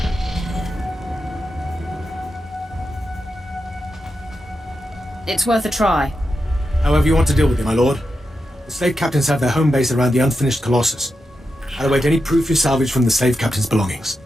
It's worth a try. However you want to deal with it, my lord. The slave captains have their home base around the unfinished Colossus. I'll await any proof you salvage from the slave captain's belongings.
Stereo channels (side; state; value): both; normal; correlation 0.88